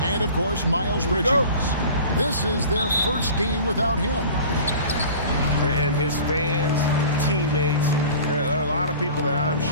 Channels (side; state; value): both; inverted; correlation -0.41